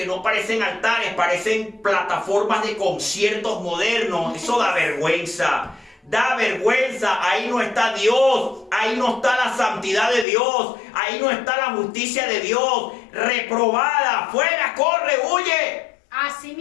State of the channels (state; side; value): drops out; right; at 10.2 s